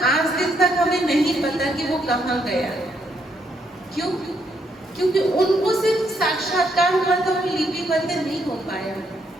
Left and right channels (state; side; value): normal; both; correlation 0.75